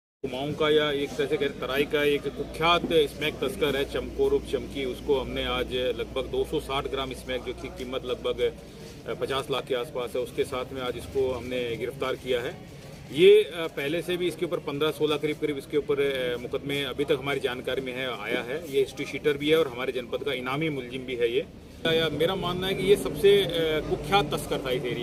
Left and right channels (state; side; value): identical; both; correlation 1.00